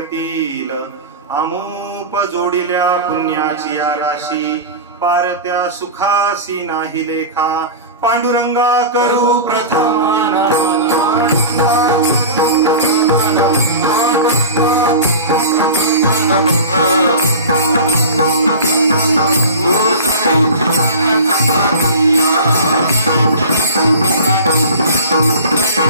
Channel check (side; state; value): both; inverted; correlation -0.33